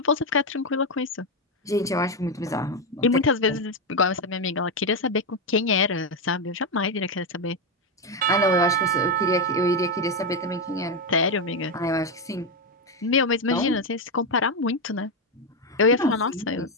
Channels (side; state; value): both; normal; correlation 0.07